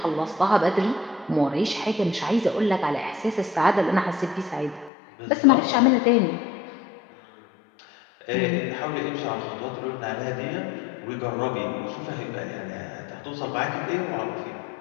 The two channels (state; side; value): drops out; right; at 4.9 s